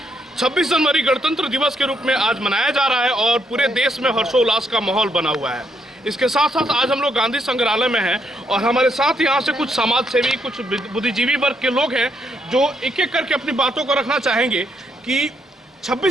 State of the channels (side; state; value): both; normal; correlation 0.75